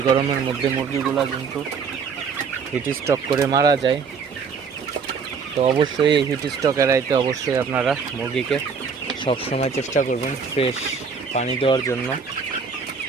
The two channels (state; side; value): quieter; left; 5.8 dB